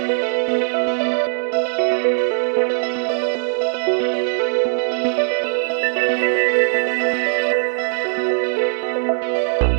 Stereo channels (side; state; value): left; silent; digital silence